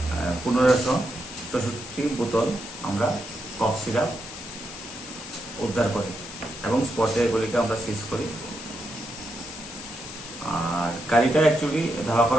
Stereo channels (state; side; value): noise; left; hiss, 12 dB below the sound